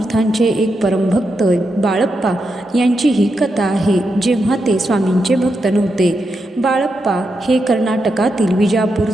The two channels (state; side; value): normal; both; correlation 0.85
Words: एक परमभक्त बाळप्पा यांची ही कथा आहे. जेव्हा ते स्वामींचे भक्त नव्हते. बाळप्पा हे कर्नाटकातील विजापूर